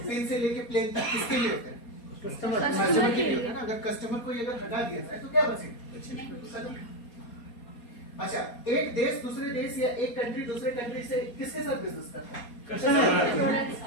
से लेके प्लेन तक, किसके लिए होता है? कस्टमर के लिए होता है ना। अगर कस्टमर को अगर हटा दिया जाए तो क्या बचेगा? अच्छा, एक देश दूसरे देश या एक कंट्री दूसरे कंट्री से किसके साथ बिजनेस करता है?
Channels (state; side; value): late; right; 4.2 ms